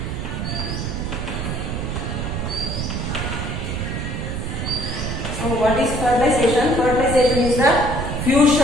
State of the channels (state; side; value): noise; right; rumble, 3 dB below the sound